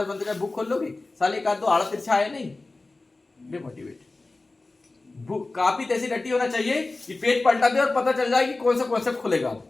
बुक खोल लोगे, साले एक आध दो आड़ा तिरछा आया नहीं, डिमोटिवेट। बुक काफी ऐसी रटी होना चाहिए कि पेज पलटा दे और पता चल जाए कि कौन सा कॉन्सेप्ट खुलेगा,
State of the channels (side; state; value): right; quieter; 3.3 dB